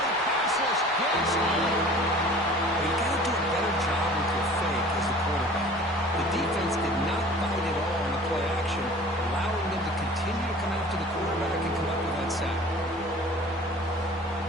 Passes, gets You got to do a better job with your fake as a quarterback. The defense did not bite at all on the play action, allowing them to continue to come after the quarterback and come up with that sack.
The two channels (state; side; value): normal; both; correlation 0.45